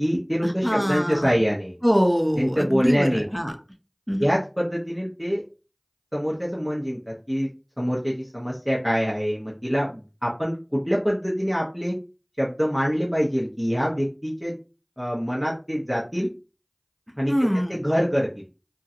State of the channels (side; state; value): both; identical; correlation 1.00